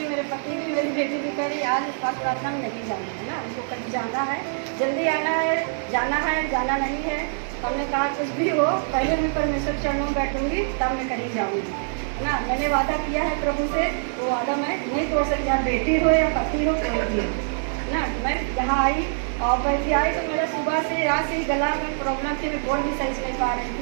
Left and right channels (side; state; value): left; silent; digital silence